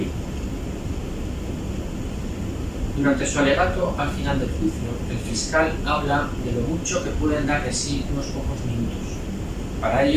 Durante su alegato al final del juicio, el fiscal habla de lo mucho que pueden dar de sí unos pocos minutos. Para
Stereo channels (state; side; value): identical; both; correlation 1.00